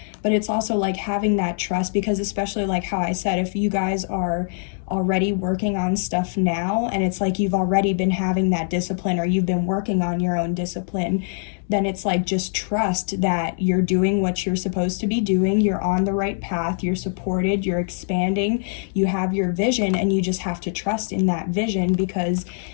But it's also like having that trust, because especially like how I said, if you guys are already working on stuff now and it's like you've already been having that discipline or you've been working on your own discipline, then it's like just trust that you're doing what you're supposed to be doing, you're on the right path, you're supported, you're expanding, you have your vision, and you just have to trust in that vision, because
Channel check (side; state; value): right; silent; digital silence